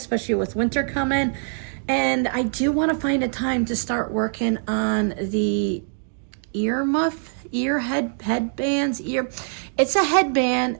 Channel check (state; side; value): silent; left; 62 dB below the other